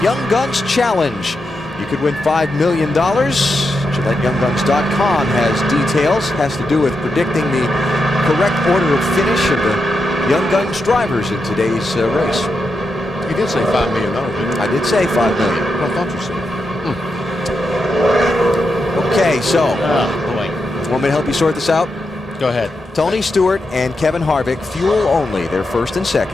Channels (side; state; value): both; normal; correlation 0.86